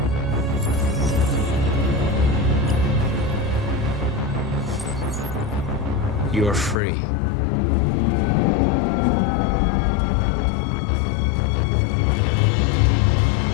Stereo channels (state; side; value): drops out; right; at 6.8 s